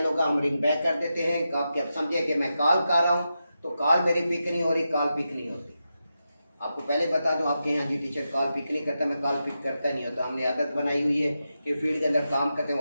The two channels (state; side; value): inverted; both; correlation -0.88